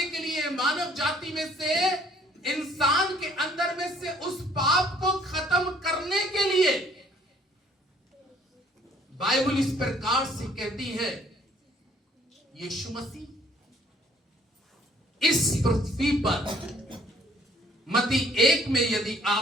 के लिए, मानव जाति में से, इंसान के अंदर में से उस पाप को खत्म करने के लिए बाइबल इस प्रकार से कहती है, यीशु मसीह इस पृथ्वी पर, मत्ती 1 में यदि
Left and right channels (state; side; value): normal; both; correlation 0.60